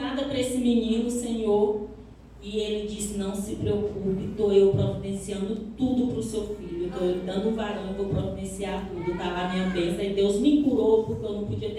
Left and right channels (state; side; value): identical; both; correlation 1.00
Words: para esse menino, Senhor. E ele disse, não se preocupe, estou eu providenciando tudo para o seu filho. Estou eu dando um varão, eu vou providenciar tudo. Está lá minha bênção. E Deus me curou, porque eu não podia